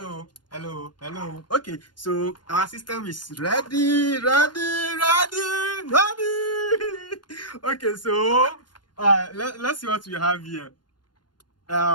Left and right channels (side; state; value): right; late; 0.71 ms